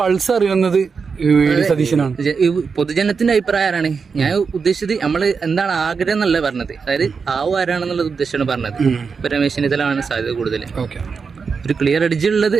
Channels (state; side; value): quieter; left; 5.4 dB